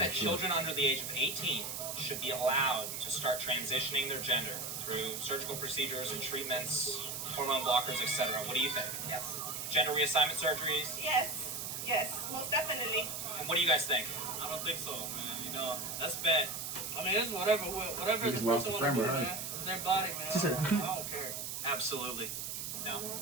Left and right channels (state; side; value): noise; right; hiss, 5 dB below the sound